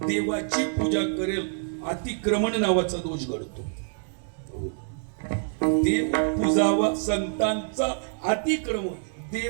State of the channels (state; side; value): silent; left; 60 dB below the other